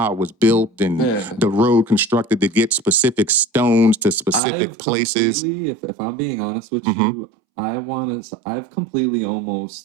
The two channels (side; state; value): left; drops out; at 4.4 s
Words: it was built and the road constructed to get specific stones to specific places. If I'm being honest with you, I've completely